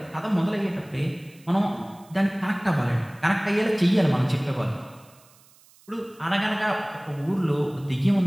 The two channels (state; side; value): noise; right; hiss, 28 dB below the sound